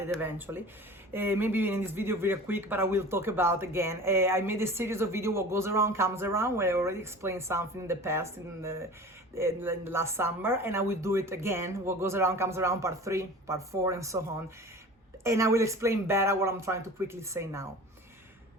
eventually, maybe in this video very quick, but I will talk about again. I made a series of videos, what goes around comes around, where I already explained something in the past, in the last summer, and I will do it again, what goes around comes around, part 3, part 4, and so on. And I will explain better what I'm trying to quickly say now.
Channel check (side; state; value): both; normal; correlation 0.39